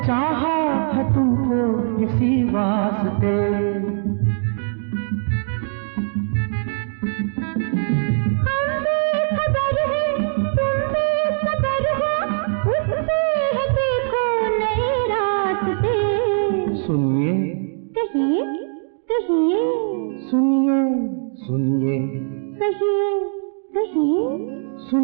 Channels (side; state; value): left; silent; digital silence